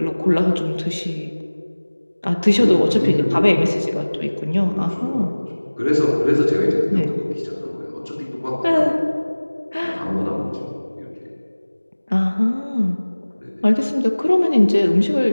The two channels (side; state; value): both; inverted; correlation -1.00